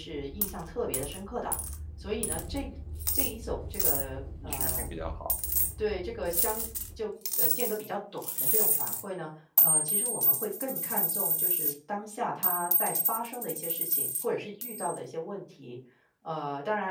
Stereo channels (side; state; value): both; identical; correlation 1.00